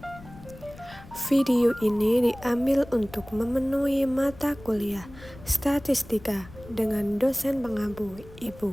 3. Video ini diambil untuk memenuhi mata kuliah Statistika dengan dosen pengampu Ibu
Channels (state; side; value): noise; left; rumble, 19 dB below the sound